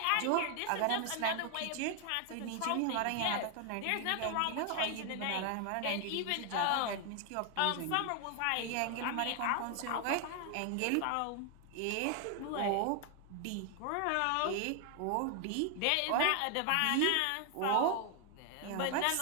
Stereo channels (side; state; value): both; different; correlation 0.00